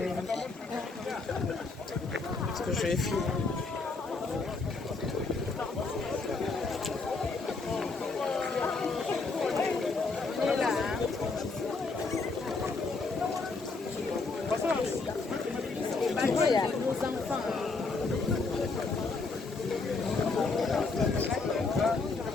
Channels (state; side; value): quieter; right; 4.0 dB